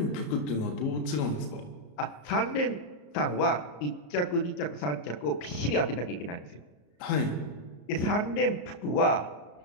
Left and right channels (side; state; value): right; late; 34 ms